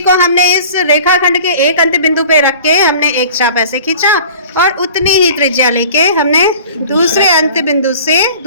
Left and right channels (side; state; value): both; inverted; correlation -0.44